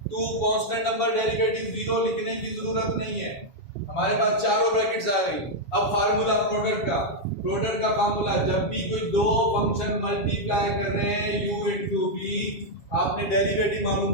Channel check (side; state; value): right; late; 7.3 ms